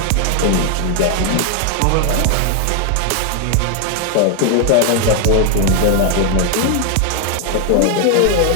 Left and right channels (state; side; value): different; both; correlation 0.00